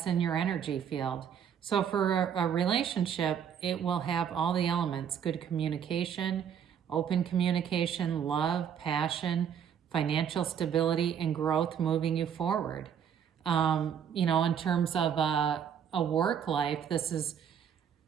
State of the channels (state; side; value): quieter; left; 8.3 dB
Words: in your energy field. So for a relationship, it will have all the elements: good communication, open communication, love, passion, financial stability, and growth moving you forward. In terms of a work life, this is